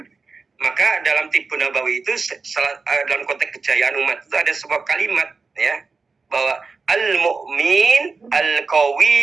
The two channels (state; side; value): quieter; left; 4.5 dB